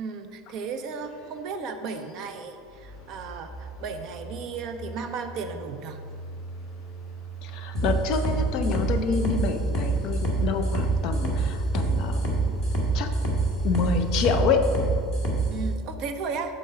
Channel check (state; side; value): normal; both; correlation 0.49